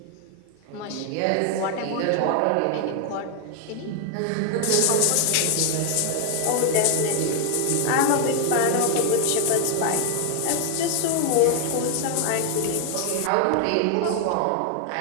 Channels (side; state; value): both; different; correlation 0.00